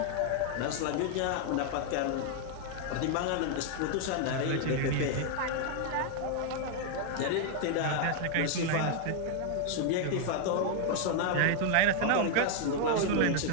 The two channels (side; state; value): both; different; correlation 0.00